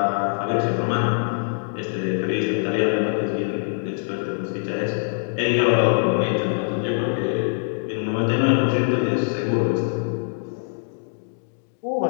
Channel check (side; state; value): right; silent; digital silence